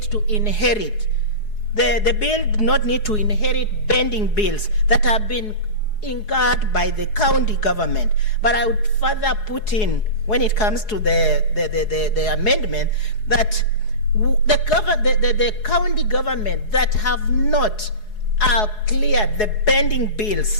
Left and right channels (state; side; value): late; right; 4.7 ms